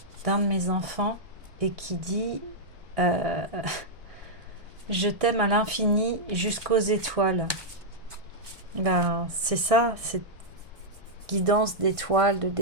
d'un de mes enfants et qui dit je t'aime à l'infini jusqu'aux étoiles. Ben, c'est ça, cette guidance d'étoiles, de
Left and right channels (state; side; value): late; left; 1.6 ms